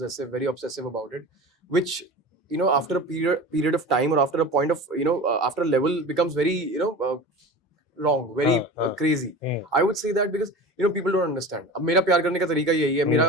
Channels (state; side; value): normal; both; correlation 0.33